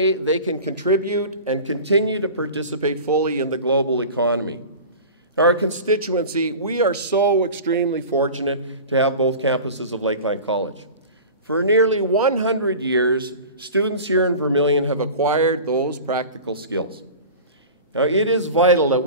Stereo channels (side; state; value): both; inverted; correlation -0.36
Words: they can contribute and continue to participate fully in the global economy. Our constituency, we are so extremely fortunate to have both campuses of Lakeline College. For nearly 100 years, students here in Vermilion have acquired those practical skills. Now, it is vital that